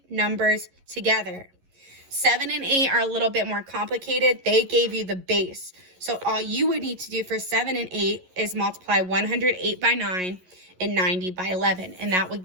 numbers together. 7 and 8 are a little bit more complicated. They gave you the base. So all you would need to do for 7 and 8 is multiply 108 by 9 and 90 by 11, and that would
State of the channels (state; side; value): late; left; 11 ms